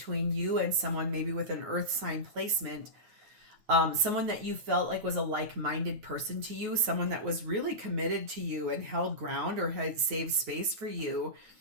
you and someone, maybe with an earth sign placement, someone that you felt like was a like-minded person to you, someone that was really committed to you and held ground or had saved space for you.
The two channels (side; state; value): left; late; 9.4 ms